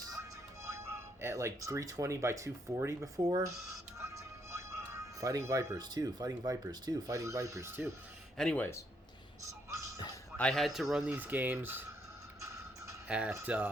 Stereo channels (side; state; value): both; normal; correlation 0.74